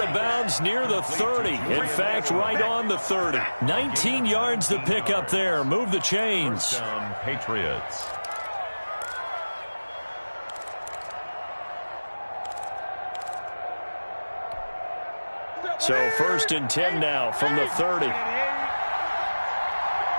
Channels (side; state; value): both; inverted; correlation -1.00